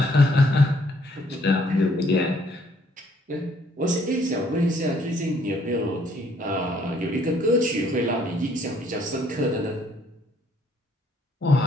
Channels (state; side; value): normal; both; correlation 0.65